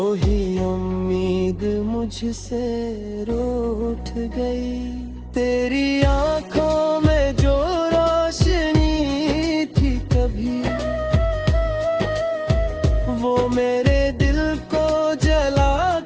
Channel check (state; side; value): identical; both; correlation 1.00